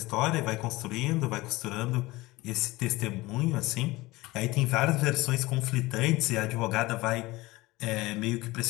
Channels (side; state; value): right; quieter; 20.4 dB